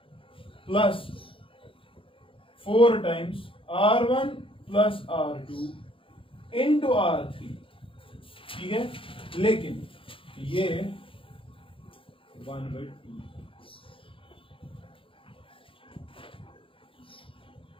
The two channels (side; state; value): right; late; 0.26 ms